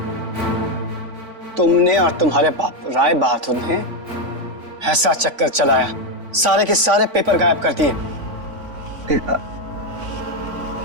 तुमने और तुम्हारे बाप राय बहादुर ने ऐसा चक्कर चलाया, सारे के सारे पेपर गायब कर दिए।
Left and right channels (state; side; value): late; left; 3.5 ms